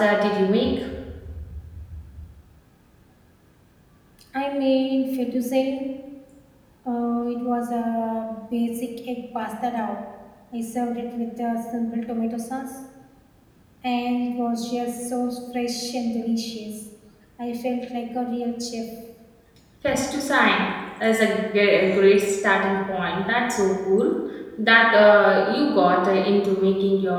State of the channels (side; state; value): both; identical; correlation 1.00